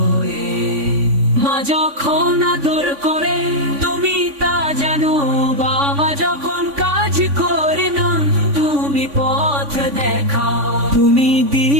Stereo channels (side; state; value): left; late; 3.5 ms